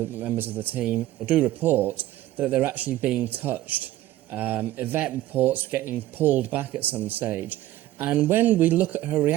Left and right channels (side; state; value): left; quieter; 14.9 dB